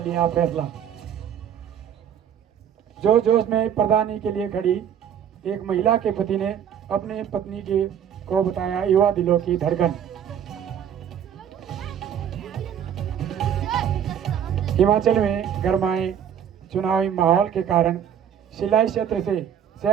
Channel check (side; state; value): left; quieter; 9.0 dB